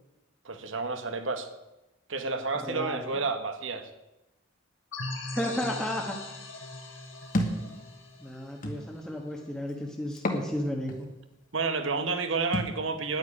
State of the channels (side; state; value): both; normal; correlation 0.20